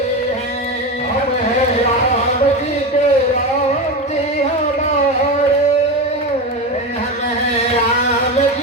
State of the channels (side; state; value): both; normal; correlation 0.19